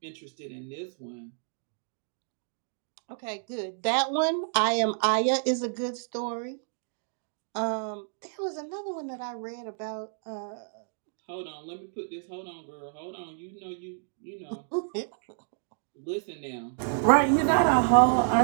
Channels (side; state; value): left; silent; digital silence